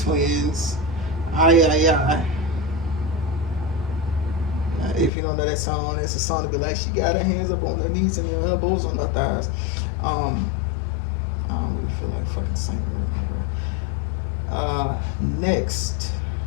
Twins. I. If you don't know that song, it's a song to be like, she got her hands up on her knees and her elbows on her thighs. Um, I don't really feel like fucking singing right now, bro. Next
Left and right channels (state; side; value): drops out; right; at 5.1 s